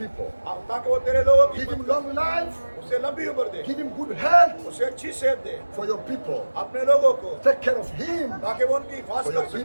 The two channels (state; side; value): inverted; both; correlation -1.00